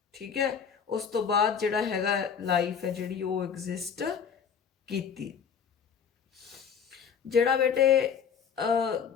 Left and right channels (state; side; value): quieter; right; 7.0 dB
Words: ਠੀਕ ਹੈ। ਉਸ ਤੋਂ ਬਾਅਦ ਜਿਹੜਾ ਹੈਗਾ ਲਾਈਫ ਹੈ ਜਿਹੜੀ ਉਹ ਐਗਜ਼ਿਸਟ ਕੀਤੀ। ਜਿਹੜਾ ਬੇਟੇ